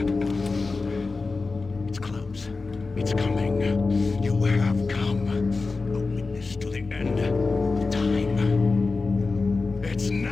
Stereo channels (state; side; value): quieter; right; 3.9 dB